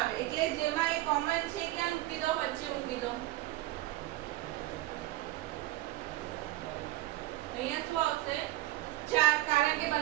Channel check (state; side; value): quieter; left; 17.2 dB